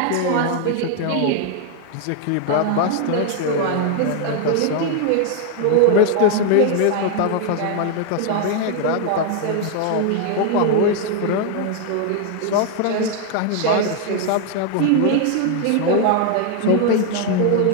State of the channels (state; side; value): different; both; correlation 0.01